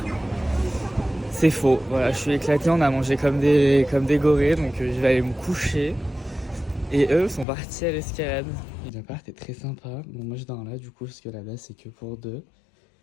C'est faux, voilà, je suis éclaté, on a mangé comme des gorées, donc je vais aller me coucher. Et eux sont partis à l'escalade. L'appart est très sympa, bon moi je dors là du coup, parce que là-bas c'est que pour 2.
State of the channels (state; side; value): drops out; right; at 7.5 s